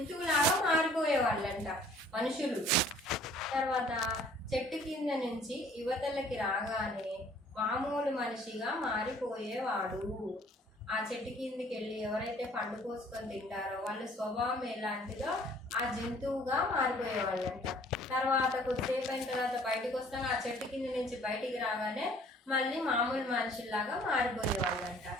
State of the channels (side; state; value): both; normal; correlation 0.56